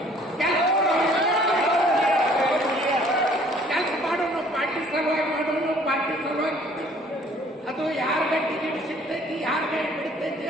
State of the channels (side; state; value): both; normal; correlation 0.57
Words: ಅದು ಯಾರಿಗೆ ಟಿಕೆಟ್ ಸಿಗ್ತೈತಿ, ಯಾರಿಗೆ ಬಿಡ್ತೈತಿ